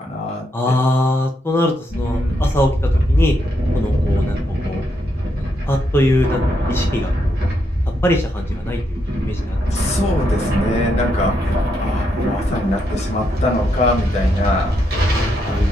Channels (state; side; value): normal; both; correlation 0.79